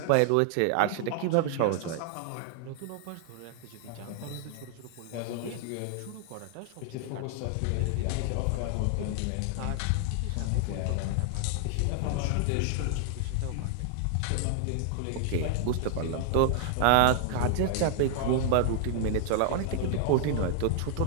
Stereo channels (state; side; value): different; both; correlation 0.00